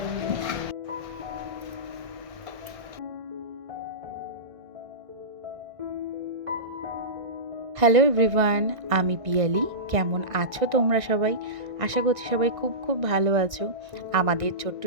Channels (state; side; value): late; left; 1.6 ms